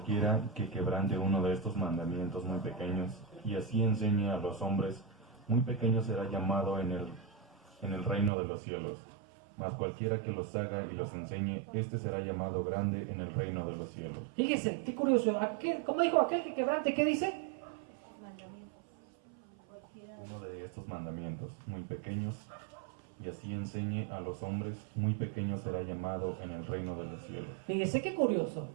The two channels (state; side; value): drops out; left; at 8.3 s